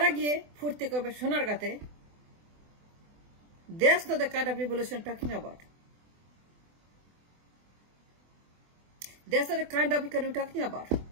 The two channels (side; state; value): left; late; 24 ms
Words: গিয়ে ফুর্তি করবে সোনার গাতে। That's not the kind of revolution I'm talking about. That's not the kind of economy I'm talking about.